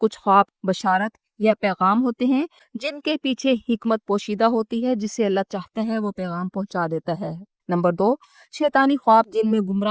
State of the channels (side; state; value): both; identical; correlation 1.00